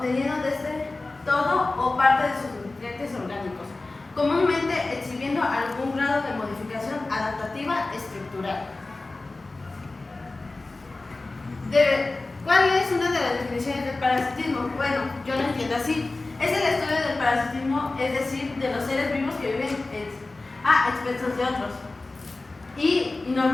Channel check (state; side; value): quieter; right; 3.2 dB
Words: desde todo o parte de sus nutrientes orgánicos, comúnmente exhibiendo algún grado de modificación adaptativa estructural. ¿Cuál es una de las definiciones del parasitismo? Bueno, yo lo entiendo así. Es el estudio del parasitismo, es decir, de los seres vivos que viven a expensas de otros. Y